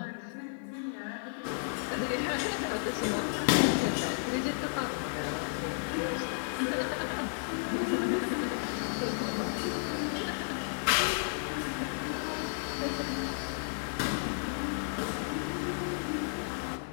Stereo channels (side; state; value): right; silent; digital silence